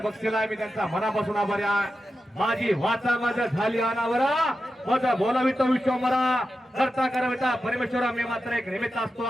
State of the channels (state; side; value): normal; both; correlation 0.91